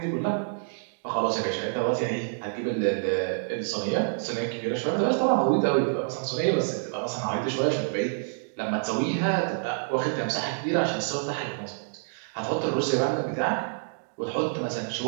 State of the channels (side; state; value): left; silent; digital silence